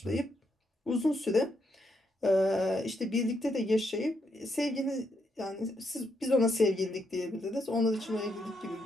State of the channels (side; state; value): both; normal; correlation 0.78